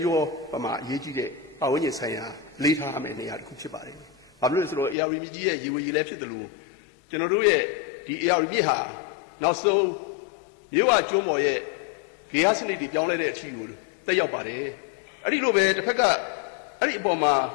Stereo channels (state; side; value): drops out; right; at 5.0 s